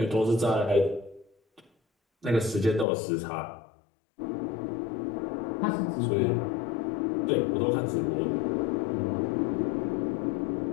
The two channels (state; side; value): drops out; right; at 2.9 s